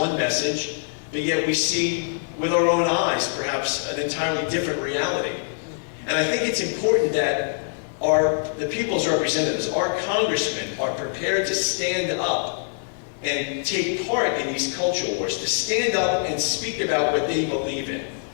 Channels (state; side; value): silent; right; 62 dB below the other